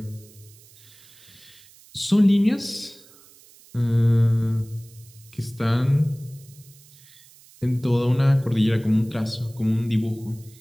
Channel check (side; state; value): right; noise; hiss, 25 dB below the sound